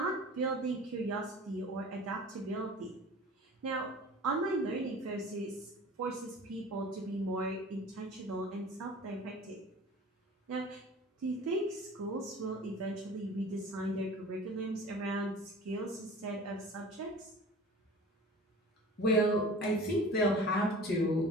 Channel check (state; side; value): normal; both; correlation 0.41